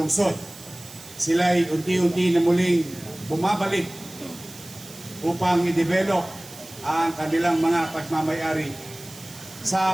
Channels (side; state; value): right; noise; hiss, 17 dB below the sound